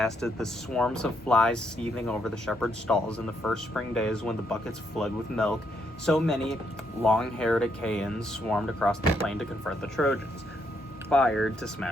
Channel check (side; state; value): both; normal; correlation 0.75